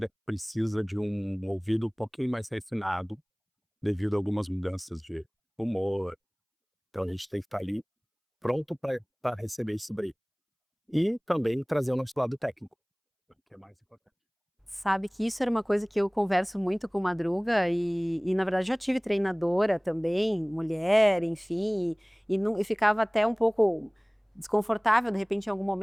precisa de um ouvido um pouquinho mais refinado, devido a algumas mudanças de humor. Então a gente tem que estar ali pronto para receber isso daí. E também trazer o nosso lado técnico, que é mais importante. Sabe que isso era uma coisa que eu converso muito com Madruga e na verdade já tive treinadora também, mulher, enfim, e ficava até um pouco desconfortável de repente em algum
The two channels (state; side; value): identical; both; correlation 1.00